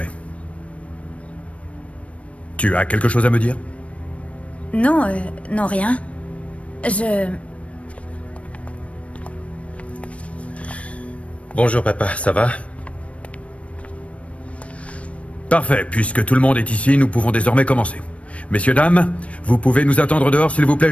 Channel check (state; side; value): late; right; 0.063 ms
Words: Tu as quelque chose à me dire? Non, non, rien. Bonjour papa, ça va? Parfait, puisque tout le monde est ici, nous pouvons désormais commencer. Messieurs, dames, vous pouvez nous attendre dehors, s'il vous plaît,